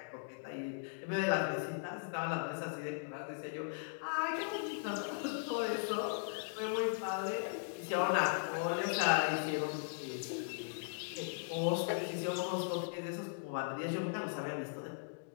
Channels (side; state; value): right; silent; digital silence